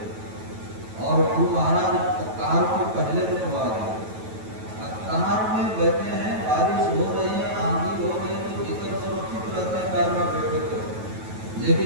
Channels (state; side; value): late; left; 9.2 ms